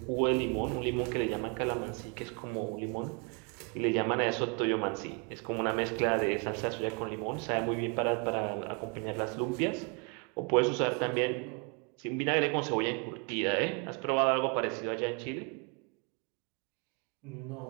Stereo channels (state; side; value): quieter; left; 33.7 dB